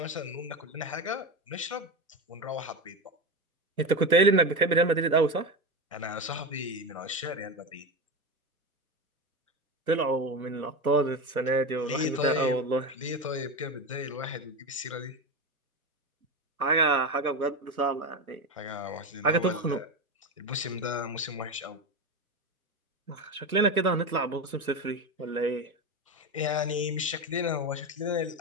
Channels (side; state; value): both; normal; correlation 0.18